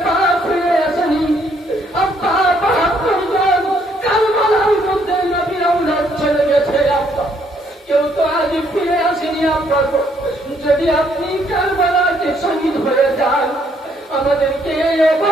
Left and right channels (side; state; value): both; normal; correlation 0.69